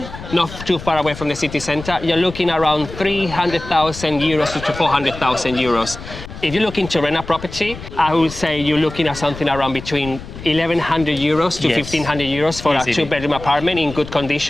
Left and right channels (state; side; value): noise; left; rumble, 13 dB below the sound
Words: not too far away from the city centre, you're looking around 300,000 euros to 400,000 euros. If you're looking to rent a property, I would say you're looking at something around between 1,100 euros to 1,500 euros for a 2-bedroom apartment in good